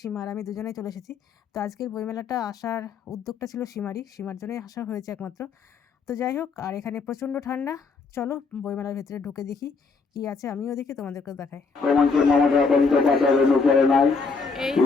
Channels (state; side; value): quieter; right; 4.7 dB